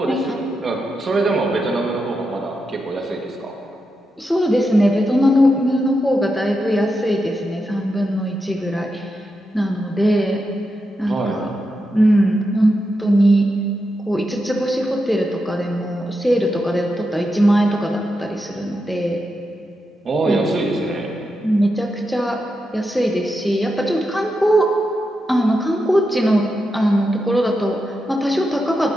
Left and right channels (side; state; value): both; normal; correlation 0.87